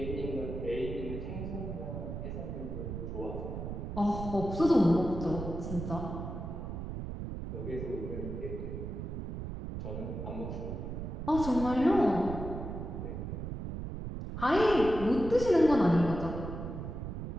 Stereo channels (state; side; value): noise; right; rumble, 6 dB below the sound